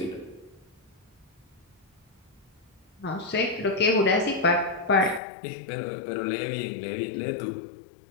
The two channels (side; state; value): right; drops out; at 5.2 s